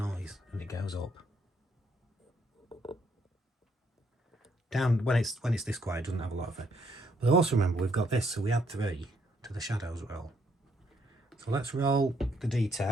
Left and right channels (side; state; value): both; normal; correlation 0.71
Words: and it goes up. Down when it's this quiet, it doesn't have a lot of it. But also remember we've got this, so we add 3 to the shadows roll. So let's roll the d10